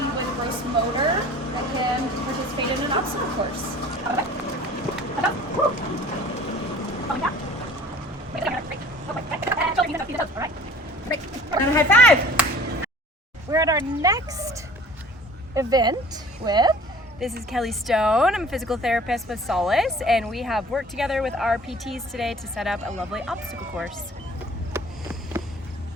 with gross motor that can participate in an obstacle course. And a high five! We're at our next event with... This is Kelly Stone. I'm a physical therapist with Solace, and we have worked together with our PTs today to set up a lovely obstacle course.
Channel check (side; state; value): both; normal; correlation 0.48